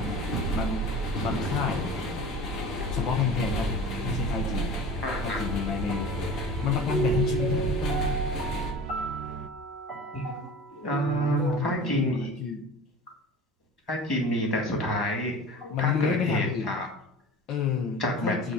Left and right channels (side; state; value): both; normal; correlation 0.38